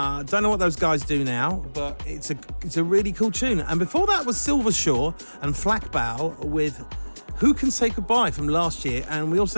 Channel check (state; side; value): inverted; both; correlation -1.00